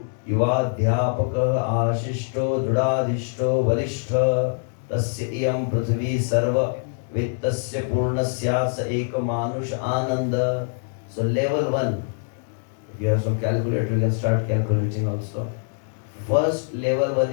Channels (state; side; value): silent; right; digital silence